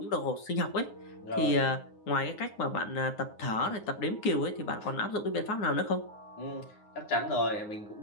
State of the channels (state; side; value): late; right; 9.5 ms